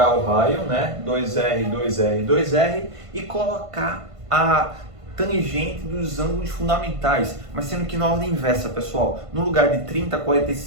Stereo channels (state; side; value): late; left; 1.5 ms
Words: o raio, 2R, 2R, 2R, e colocar a tangente dos ângulos fundamentais, mas sendo que na ordem inversa, pessoal. No lugar de 30,